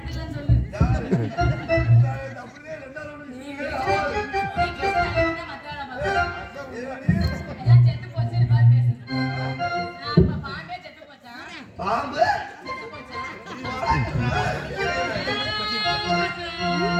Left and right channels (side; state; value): both; identical; correlation 1.00